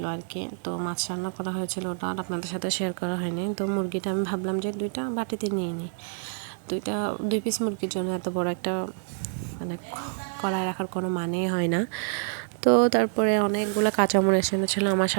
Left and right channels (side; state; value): left; silent; 60 dB below the other